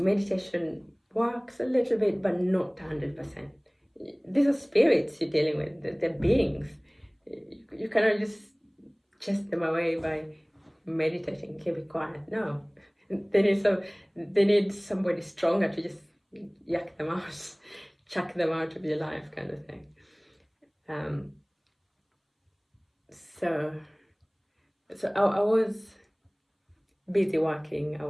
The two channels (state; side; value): identical; both; correlation 1.00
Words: works a little bit, but not 100%. These are spirits you're dealing with, they're beings. You cannot just chase them away by meditating, keep it quiet. No, they need somebody stronger to just yak them out, chuck them out of your life, kind of thing. So I was busy working